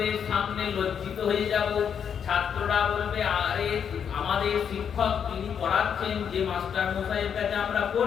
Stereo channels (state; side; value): quieter; right; 7.7 dB